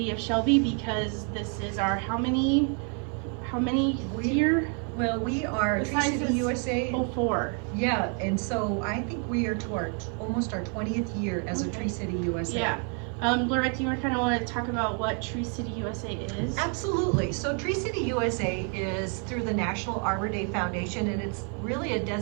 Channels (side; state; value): left; quieter; 39.5 dB